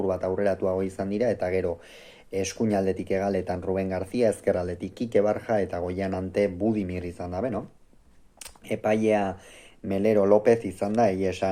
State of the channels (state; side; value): identical; both; correlation 1.00